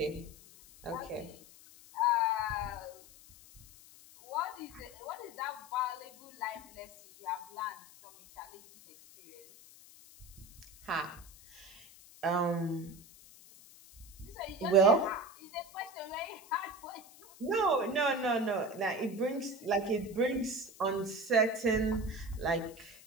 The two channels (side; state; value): left; noise; hiss, 21 dB below the sound